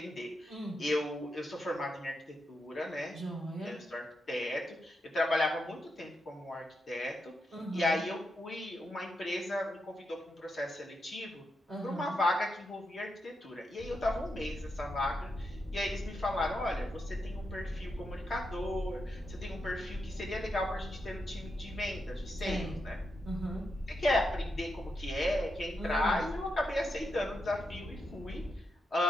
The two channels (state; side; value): normal; both; correlation 0.84